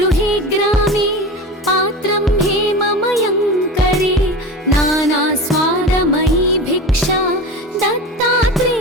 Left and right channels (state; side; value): normal; both; correlation 0.29